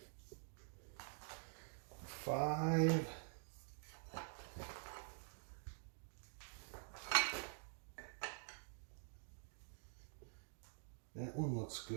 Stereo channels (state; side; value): silent; left; digital silence